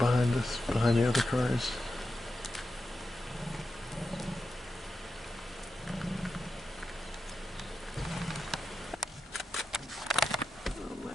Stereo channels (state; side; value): normal; both; correlation 0.89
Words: us, behind the other cars. Oh my